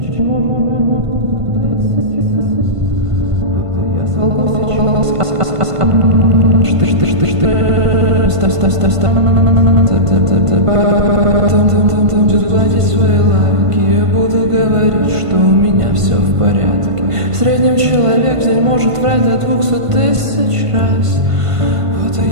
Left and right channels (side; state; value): left; late; 1.5 ms